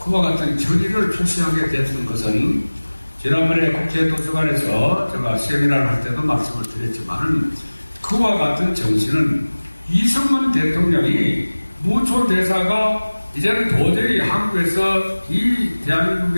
그와 같은 결의를 표시하게 됐던 것은 지난번에 국회 도서관에서 제가 세미나를 할 때도 말씀을 드렸지만 그와 같은 정신은 이승만 대통령이 무초대사가 이제는 도저히 한국에서 이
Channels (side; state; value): both; inverted; correlation -1.00